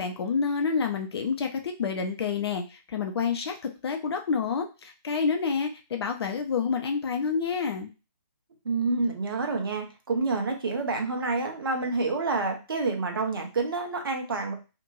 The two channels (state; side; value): inverted; both; correlation -0.48